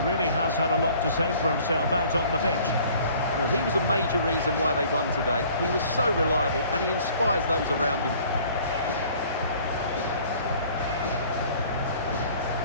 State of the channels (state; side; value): inverted; both; correlation -0.53